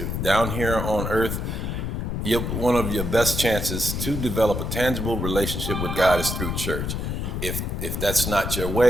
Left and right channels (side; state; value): left; noise; rumble, 3 dB below the sound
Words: down here on earth. One of your best chances to develop a tangible relationship with God is through church. If that's not your